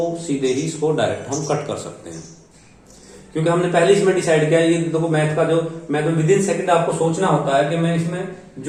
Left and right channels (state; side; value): identical; both; correlation 1.00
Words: सीधे ही इसको डायरेक्ट हम कट कर सकते हैं, क्योंकि हमने पहले इसमें डिसाइड किया। ये देखो मैथ का जो मैथ विद इन सेकंड आपको सोचना होता है कि मैं इसमें